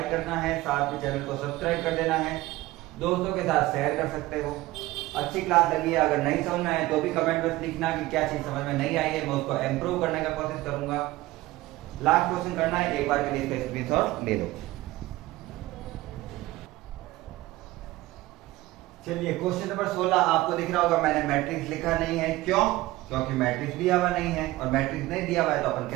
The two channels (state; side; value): quieter; left; 18.0 dB